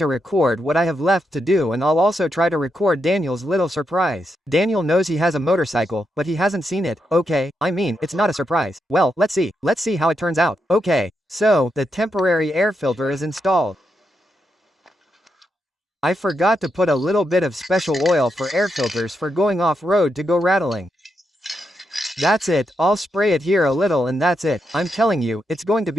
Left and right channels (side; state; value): both; normal; correlation 0.83